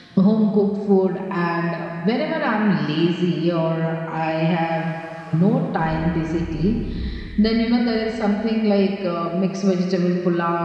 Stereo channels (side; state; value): both; identical; correlation 1.00